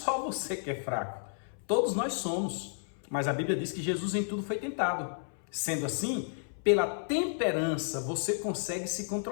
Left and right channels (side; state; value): right; silent; 56 dB below the other